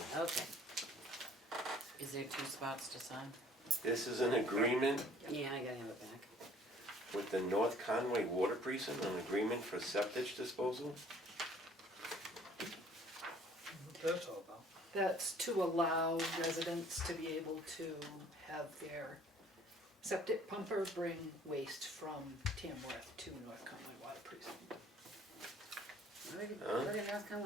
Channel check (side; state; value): both; normal; correlation 0.55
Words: Okay, Is there 2 spots to sign? This is an agreement yeah, I gotta have it back. with the North Conway Water Precinct, an agreement for septic disposal. What that's all about. That's to allow residents to be able to have their septic pumper bring waste from Tamworth to North Conway Water Precinct. Where did North